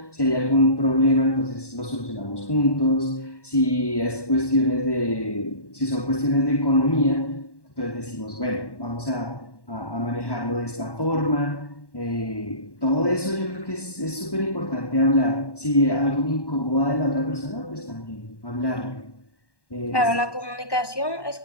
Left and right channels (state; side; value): late; right; 1.1 ms